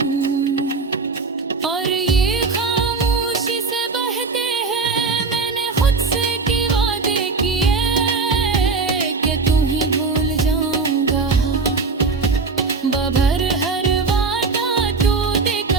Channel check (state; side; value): quieter; left; 4.4 dB